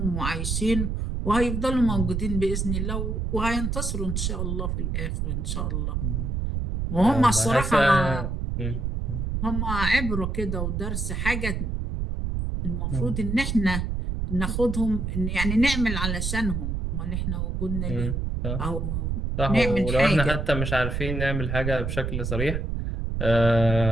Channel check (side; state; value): right; noise; rumble, 1 dB below the sound